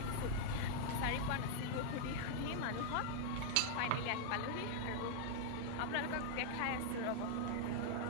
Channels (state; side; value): different; both; correlation -0.01